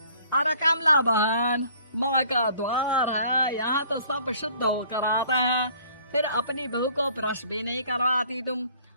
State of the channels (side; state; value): both; inverted; correlation -0.56